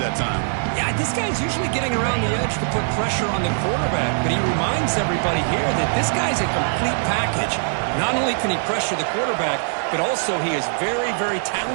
time. Yeah, this guy's usually getting around the edge to put pressure on the quarterback, but he reminds everybody here that this guy's a complete package. Not only can he pressure the quarterback, but also he is very, very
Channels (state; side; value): silent; left; digital silence